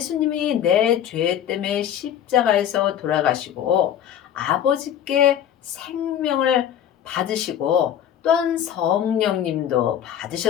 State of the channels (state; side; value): quieter; right; 10.0 dB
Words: 내 죄 때문에 십자가에서 돌아가시고 아버지께 생명을 받으시고 또한 성령님도